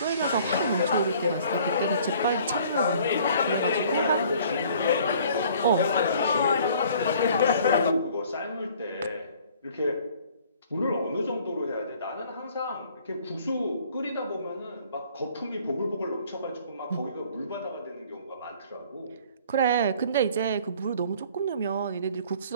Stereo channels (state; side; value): inverted; both; correlation -0.54